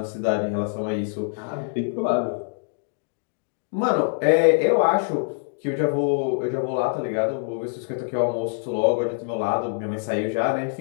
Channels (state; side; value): silent; right; digital silence